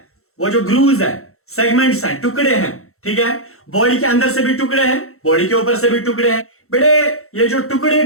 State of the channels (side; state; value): right; late; 0.63 ms